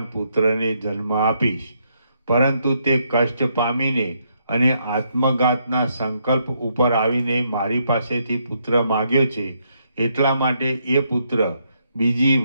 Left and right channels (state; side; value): inverted; both; correlation -0.76